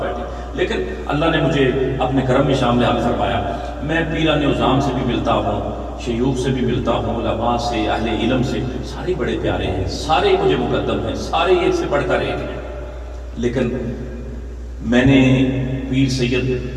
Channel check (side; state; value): both; identical; correlation 1.00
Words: بیٹھے، لیکن اللہ نے مجھے اپنے کرم میں شامل حال فرمایا۔ میں پیران عظام سے بھی ملتا ہوں، شیوخ سے بھی ملتا ہوں، علماء سے، اہل علم سے، سارے بڑے پیارے ہیں، سارے مجھے مقدم ہیں، سارے ایک سے بڑھ کر ایک ہیں، لیکن میں نے پیر سید